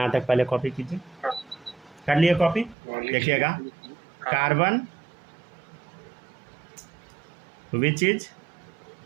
तक पहले कॉपी कीजिए, कर लिए कॉपी। देखिएगा carbon which is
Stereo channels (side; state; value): left; drops out; at 2.8 s